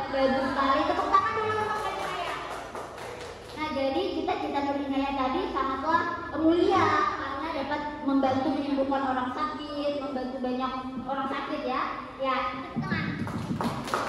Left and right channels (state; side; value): identical; both; correlation 1.00